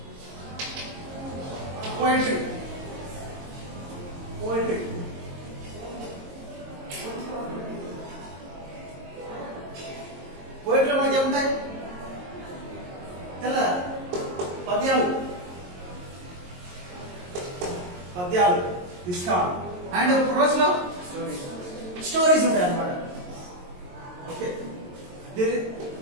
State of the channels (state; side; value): late; left; 22 ms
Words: poetry. పోయట్రీలో మనకి ఏముంటాయి? తెల్ల పద్యాలు ఇస్తాం. అండ్ ప్రోజ్ లో స్టోరీస్ ఉంటాయి అన్నమాట. Okay,